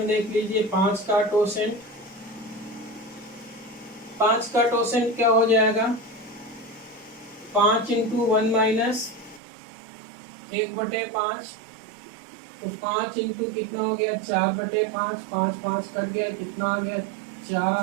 देख लीजिए। 5 का टोसेंट, 5 का टोसेंट क्या हो जाएगा, 5 इंटू 1 माइनस 1/5, तो 5 इंटू कितना हो गया 4/5, 5 5 कट गया, कितना आ गया 4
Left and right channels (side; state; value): left; drops out; at 9.4 s